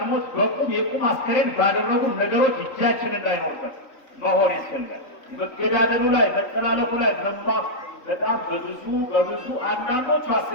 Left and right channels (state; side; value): late; right; 3.5 ms